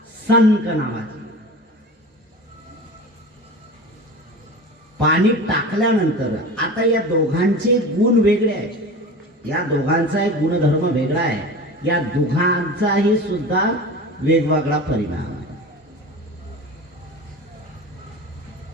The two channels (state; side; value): normal; both; correlation 0.33